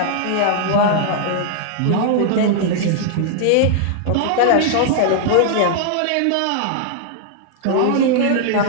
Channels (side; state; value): both; different; correlation -0.01